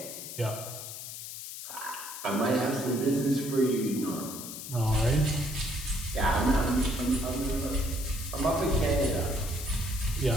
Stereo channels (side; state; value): left; noise; hiss, 9 dB below the sound